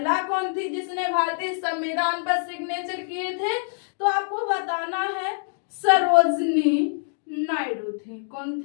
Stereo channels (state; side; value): silent; right; digital silence